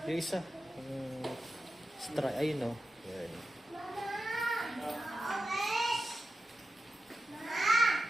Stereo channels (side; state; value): both; normal; correlation 0.91